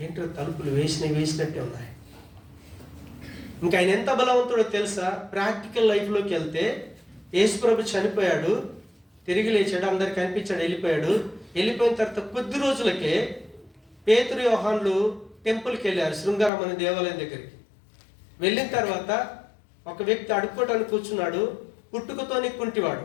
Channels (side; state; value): right; drops out; at 16.5 s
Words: ఏంటో తలుపులు వేసినట్టే ఉన్నాయి. ఇంకా ఆయన ఎంత బలవంతుడో తెలుసా? ప్రాక్టికల్ లైఫ్లోకి వెళ్తే యేసు ప్రభు చనిపోయాడు, తిరిగి లేచాడు, అందరికి కనిపించాడు, వెళ్ళిపోయిన తర్వాత కొద్ది రోజులకే పేతురు యోహాన్లు టెంపుల్కి వెళ్ళారు, శృంగారం అనే దేవాలయం దగ్గరికి. వెళ్ళిన తర్వాత ఒక వ్యక్తి అడుక్కోవటానికి కూర్చున్నాడు, పుట్టుకతోని కుంటివాడు.